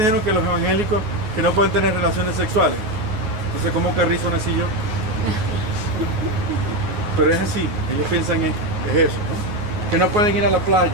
que los evangélicos que no pueden tener relaciones sexuales. Entonces, ¿cómo carrizo nací yo? Pero es así, ellos piensan es eso, ¿no? Que no pueden ir a la playa,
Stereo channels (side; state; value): left; late; 9.5 ms